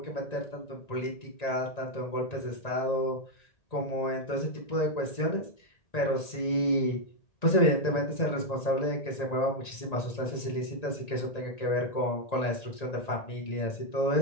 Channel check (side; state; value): right; late; 1.9 ms